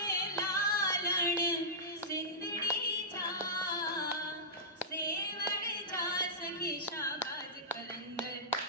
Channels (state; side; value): normal; both; correlation -0.15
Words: लालण सिंदड़ी जा सेवण जा सखी शाबाज कलंदर